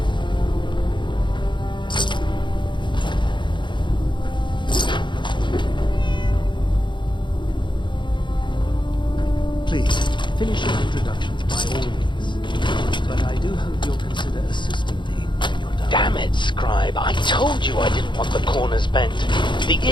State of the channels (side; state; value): right; late; 0.23 ms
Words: Please, finish your introductions by all means. But I do hope you'll consider assisting me when you're done. Damn it, Scribe. I told you I didn't want the corners bent. The